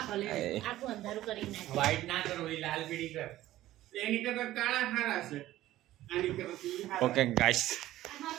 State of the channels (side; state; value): left; quieter; 14.9 dB